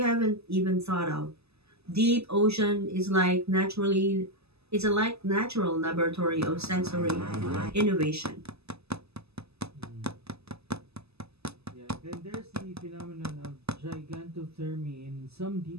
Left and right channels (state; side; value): late; left; 0.79 ms